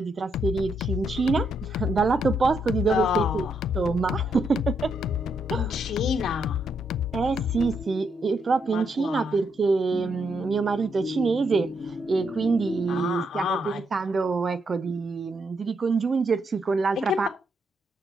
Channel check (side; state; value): both; normal; correlation 0.78